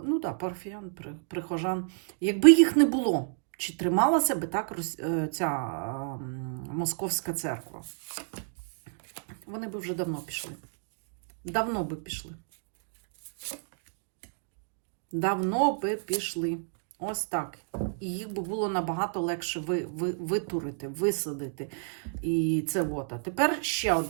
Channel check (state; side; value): silent; left; digital silence